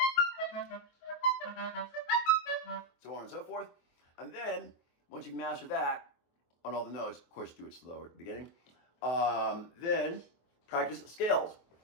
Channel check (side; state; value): right; late; 24 ms